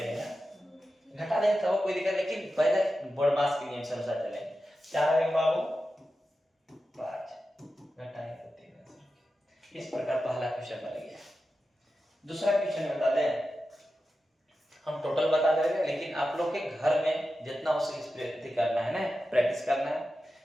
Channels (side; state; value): both; normal; correlation 0.92